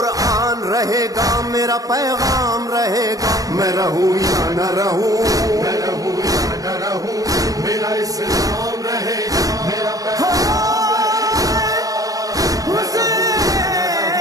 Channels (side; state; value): left; late; 0.17 ms